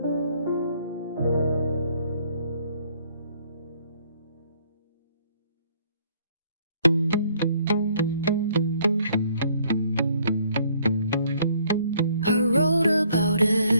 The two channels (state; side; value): inverted; both; correlation -0.64